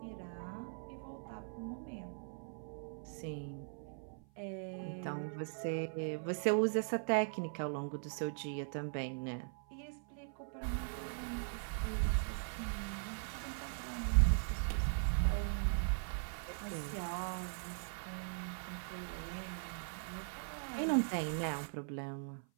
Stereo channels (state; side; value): silent; left; 51 dB below the other